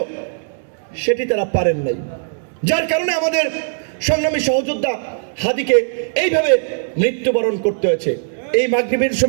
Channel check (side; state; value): left; silent; digital silence